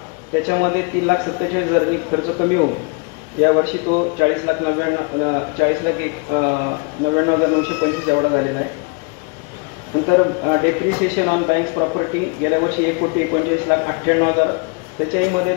त्याच्यामध्ये 3,47,000 खर्च कमी होऊन यावर्षी तो 40,99,925 एवढा झालेला आहे. नंतर डेप्रिसिएशन ऑन बँक्स प्रॉपर्टी गेल्या वर्षी 1,39,98,000 त्याच्यामध्ये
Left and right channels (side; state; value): right; quieter; 32.2 dB